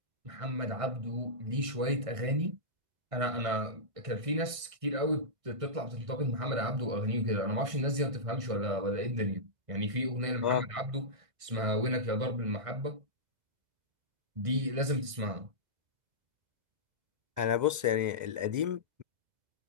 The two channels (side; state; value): left; late; 1.6 ms